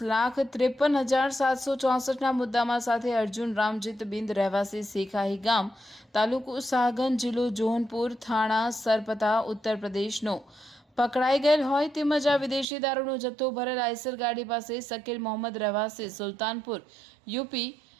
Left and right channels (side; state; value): left; drops out; at 12.7 s